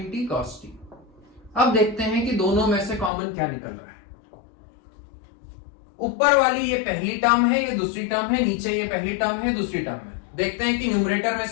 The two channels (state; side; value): drops out; right; at 3.1 s